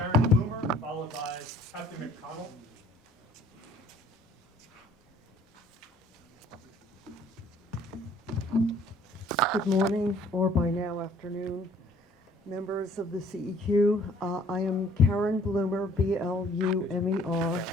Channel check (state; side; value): normal; both; correlation 0.57